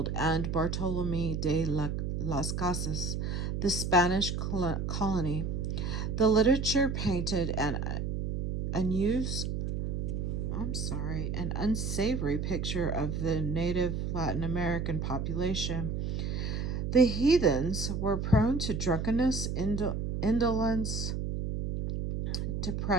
and Bartolome de las Casas, the Spanish colony. The literature painted an unsavory picture of the native Latin American population. The heathens were prone to drunkenness, indolence,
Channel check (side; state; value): right; noise; hum, 2 dB below the sound